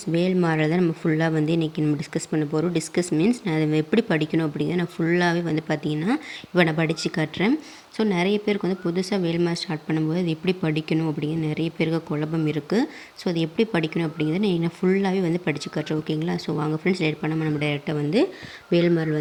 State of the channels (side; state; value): both; identical; correlation 1.00